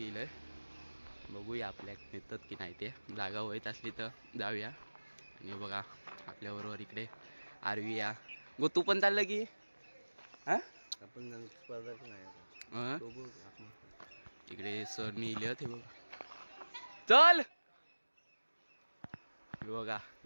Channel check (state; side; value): inverted; both; correlation -1.00